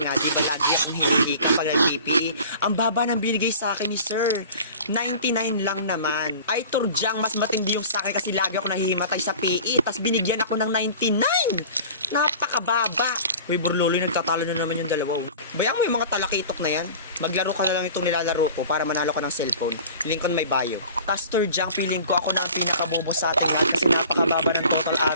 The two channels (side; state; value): both; inverted; correlation -0.42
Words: di ba, lagi akong hinihika pag nag-PPE. Ang baba ng binigay sa akin ni sir. 99 lang naman. Ay, Turjang, mas matindi yung sa akin kasi lagi ako nahihimatay sa PE. Tas binigyan ako ng 99. Napakababa. Uy, Borloloy, nagtatalo na naman yung dalawa. Bayang mo yung mga talakitok na yan. Maglaro ka na lang itong nilalaro ko para manalo ka ng cellphone. Link ko na may bio. Tas, Turjang, feeling ko ako na ang pinakabobo sa atin ha, kasi napakababa ng total